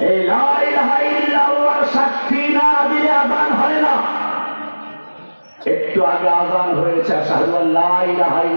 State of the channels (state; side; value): inverted; both; correlation -1.00